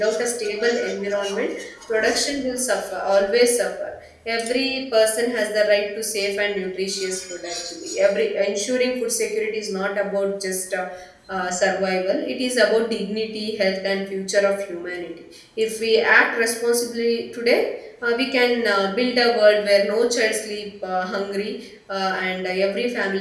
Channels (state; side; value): identical; both; correlation 1.00